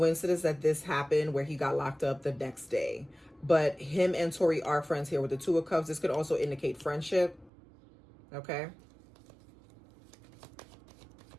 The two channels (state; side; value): drops out; left; at 7.5 s